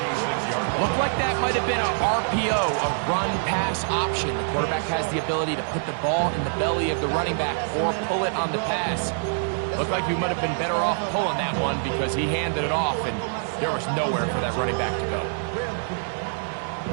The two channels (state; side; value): silent; left; digital silence